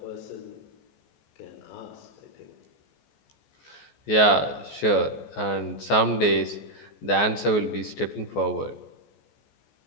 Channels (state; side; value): late; right; 14 ms